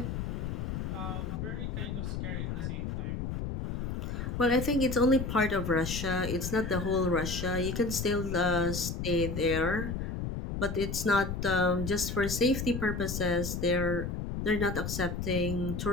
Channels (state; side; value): noise; left; rumble, 4 dB below the sound